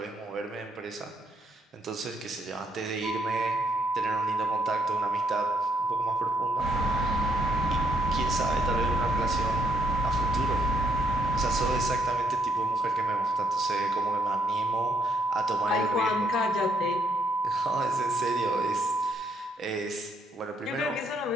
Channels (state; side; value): normal; both; correlation 0.72